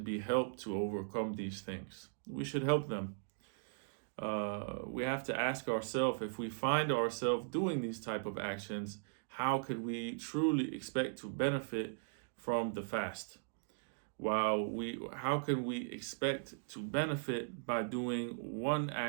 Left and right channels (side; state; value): left; silent; digital silence